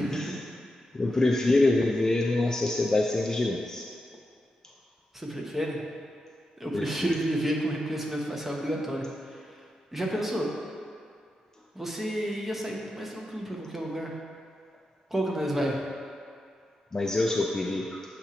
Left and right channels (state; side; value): normal; both; correlation 0.88